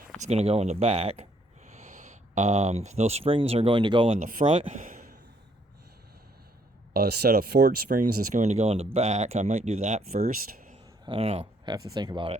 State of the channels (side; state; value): both; normal; correlation 0.68